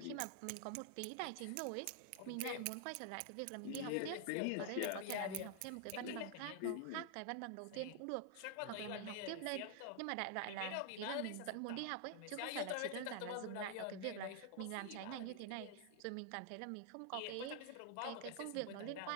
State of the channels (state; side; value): different; both; correlation 0.00